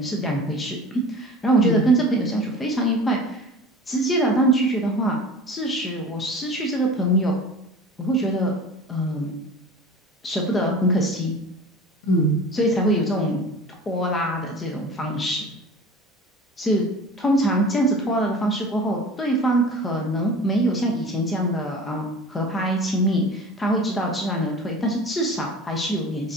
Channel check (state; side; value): normal; both; correlation 0.39